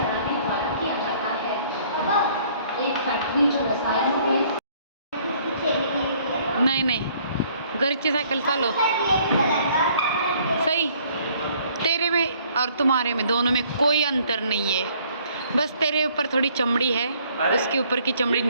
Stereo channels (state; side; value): inverted; both; correlation -0.61